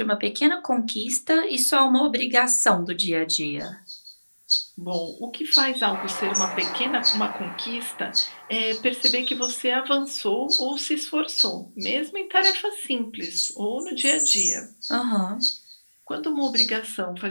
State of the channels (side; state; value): both; inverted; correlation -1.00